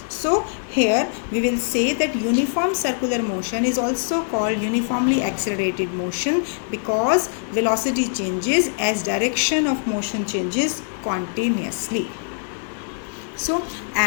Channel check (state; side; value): silent; right; 64 dB below the other